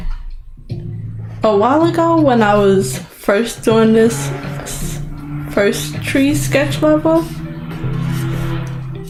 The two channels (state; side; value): identical; both; correlation 1.00